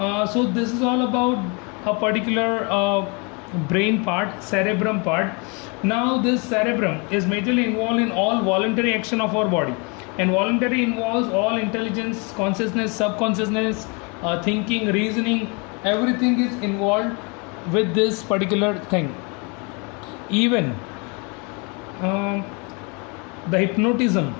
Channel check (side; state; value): right; quieter; 31.9 dB